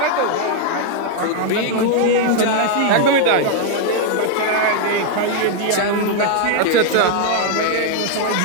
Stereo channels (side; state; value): both; different; correlation 0.00